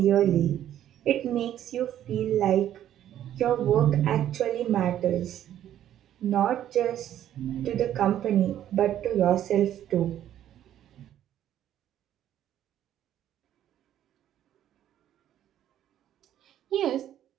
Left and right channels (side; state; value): left; quieter; 11.4 dB